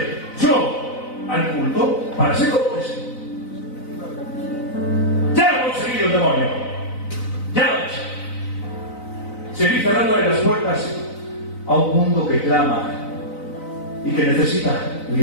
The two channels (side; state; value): right; late; 4.0 ms